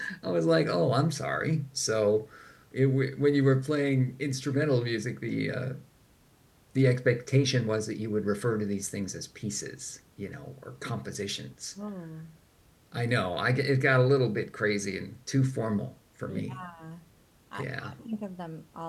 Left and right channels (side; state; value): both; identical; correlation 1.00